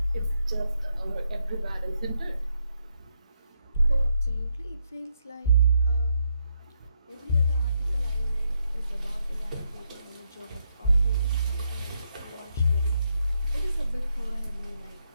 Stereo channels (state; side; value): inverted; both; correlation -0.79